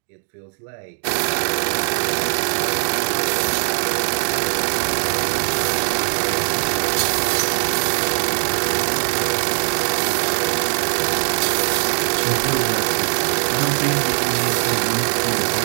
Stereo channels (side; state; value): left; silent; 63 dB below the other